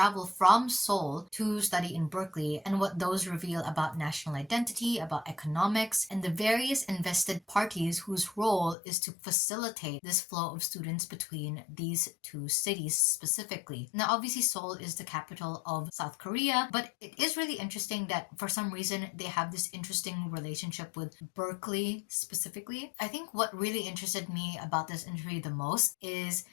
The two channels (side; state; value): right; drops out; at 8.8 s